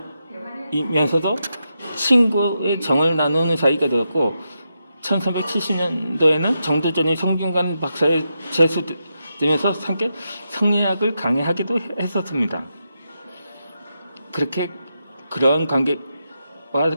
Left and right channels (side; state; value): both; inverted; correlation -0.86